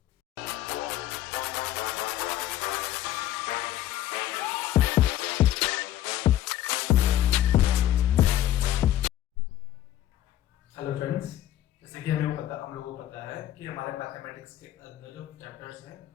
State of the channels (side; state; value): right; quieter; 12.9 dB